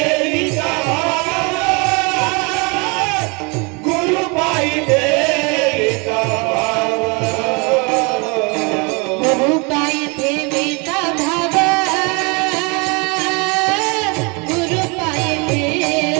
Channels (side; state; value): left; quieter; 30.4 dB